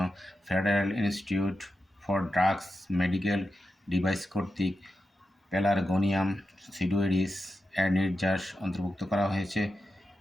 federal institute for drugs medical device কর্তৃক প্যালারগোনিয়াম সিডোয়েডিস এর নির্যাস অন্তর্ভুক্ত করা হয়েছে।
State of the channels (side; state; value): both; normal; correlation 0.89